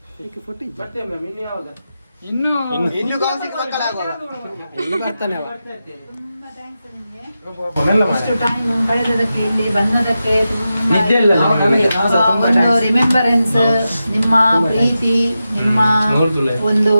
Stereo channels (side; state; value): both; inverted; correlation -0.91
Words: ಇನ್ನು ಬರ್ತಾನೆ ಇಷ್ಟು ಟೈಮ್ ಕಳೆದದಕ್ಕೆ ಇಲ್ಲಿ ಬಂದದಕ್ಕೆ ತುಂಬಾ ನಿದ್ದೆ ಇಲ್ಲ ನಮಗೆ. ನಾವು ಸಹ ತುಂಬಾ ಒಂದು thanks. ರಿಮೆಂಬರೆನ್ಸ್, ನಿಮ್ಮ ಪ್ರೀತಿ, ನಿಮ್ಮ ನೋಡ್ತುಲೆ. ಒಂದು